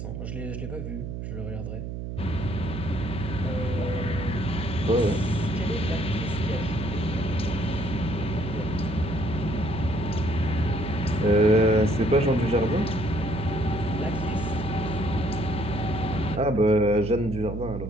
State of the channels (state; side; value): noise; right; hum, 6 dB below the sound